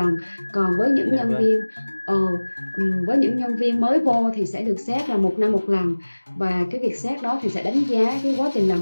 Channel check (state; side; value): inverted; both; correlation -1.00